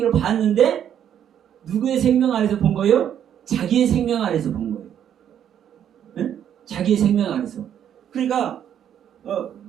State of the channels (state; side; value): quieter; left; 9.6 dB